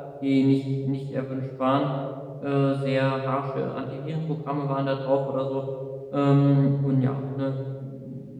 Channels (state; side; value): identical; both; correlation 1.00